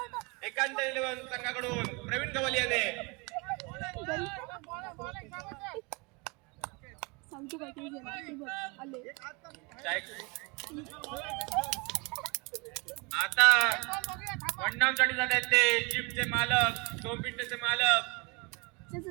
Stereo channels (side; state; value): left; quieter; 28.7 dB